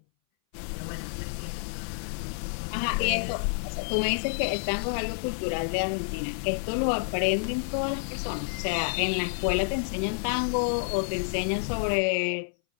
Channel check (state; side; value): silent; right; 59 dB below the other